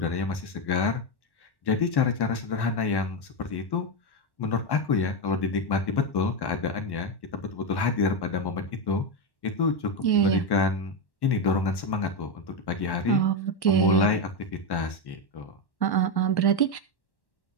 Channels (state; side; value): late; right; 1.1 ms